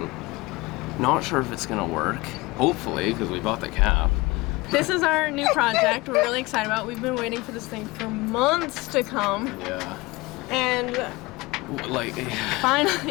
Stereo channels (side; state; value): right; quieter; 22.6 dB